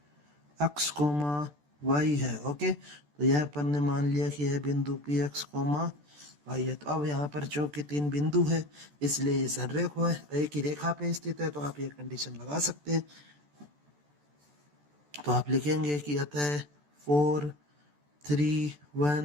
x, y है। ओके, तो यह अपन ने मान लिया कि यह बिंदु P x, y है। तो अब यहाँ पर चूंकि तीन बिंदु है इसलिए ये सररेख है, एक ही रेखा पे स्थित है, तो आप ये कंडीशन लगा सकते हैं। तो आप लिखेंगे कि अतः 4 3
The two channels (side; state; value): left; late; 14 ms